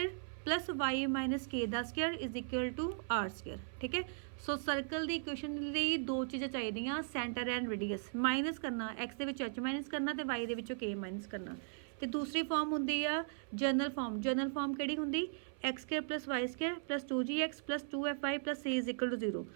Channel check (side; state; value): left; silent; 52 dB below the other